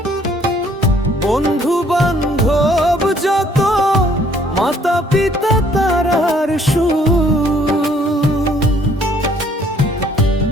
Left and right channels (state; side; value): normal; both; correlation 0.62